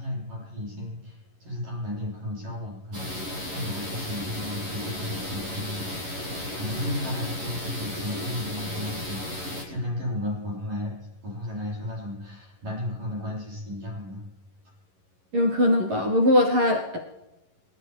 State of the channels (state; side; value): late; left; 11 ms